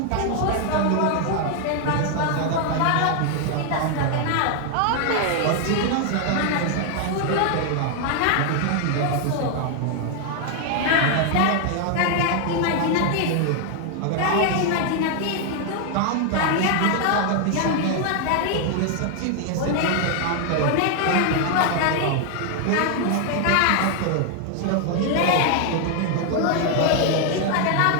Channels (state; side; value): different; both; correlation 0.00